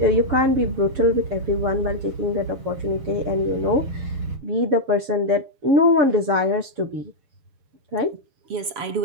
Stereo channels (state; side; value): late; left; 7.0 ms